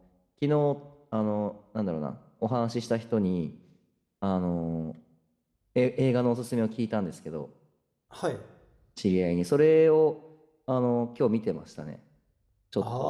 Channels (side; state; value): both; identical; correlation 1.00